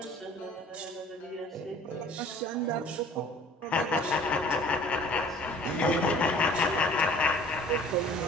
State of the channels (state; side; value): normal; both; correlation 0.50